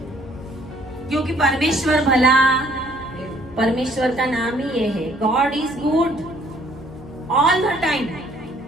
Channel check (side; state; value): left; noise; hum, 19 dB below the sound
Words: क्योंकि परमेश्वर भला, परमेश्वर का नाम ही ये है। God is good all the time.